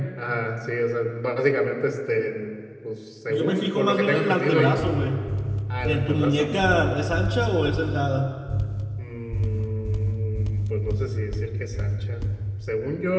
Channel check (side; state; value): both; identical; correlation 1.00